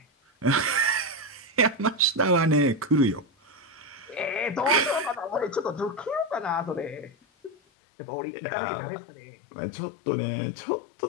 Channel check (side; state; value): right; drops out; at 7.6 s